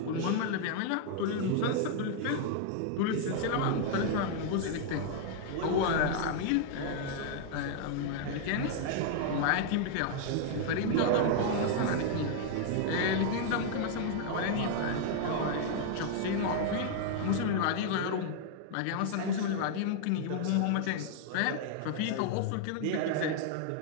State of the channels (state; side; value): different; both; correlation -0.01